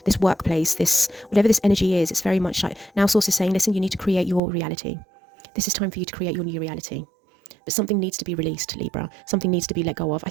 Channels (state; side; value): drops out; left; at 4.4 s